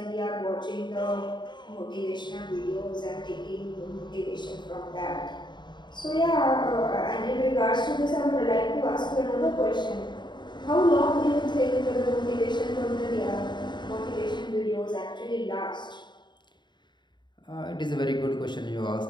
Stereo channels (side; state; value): right; late; 0.22 ms